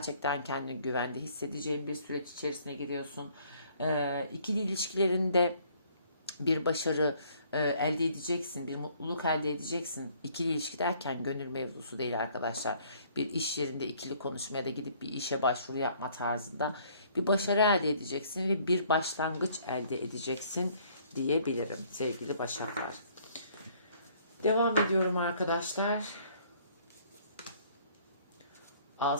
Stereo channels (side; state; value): both; inverted; correlation -0.61